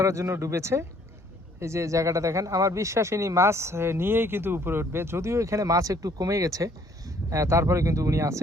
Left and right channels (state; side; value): normal; both; correlation 0.61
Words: জন্য ডুবেছে। এই যে জায়গাটা দেখেন, আমার বিশ্বাস ইনি মাছ নিয়েই কিন্তু উপরে উঠবে। যদিও এখানে মাছ একটু কমে গেছে, তারপরে কিন্তু উনি